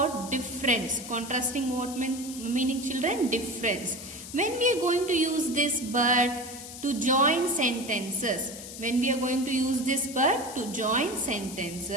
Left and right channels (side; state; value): left; noise; hiss, 12 dB below the sound